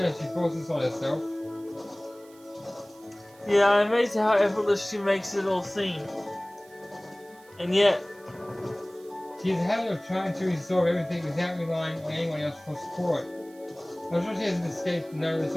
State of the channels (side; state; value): right; noise; hiss, 27 dB below the sound